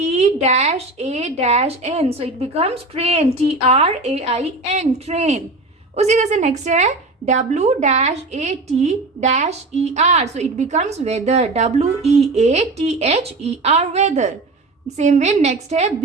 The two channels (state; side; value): quieter; left; 3.1 dB